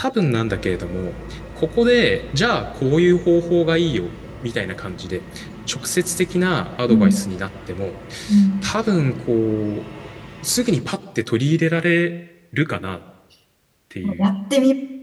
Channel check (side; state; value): both; identical; correlation 1.00